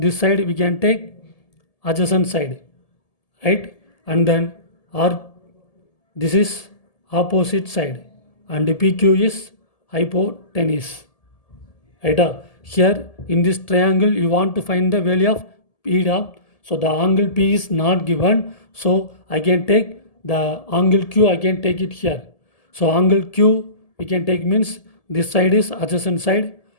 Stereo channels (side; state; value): right; late; 1.7 ms